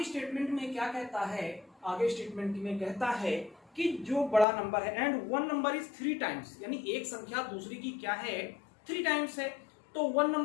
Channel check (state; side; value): drops out; right; at 4.5 s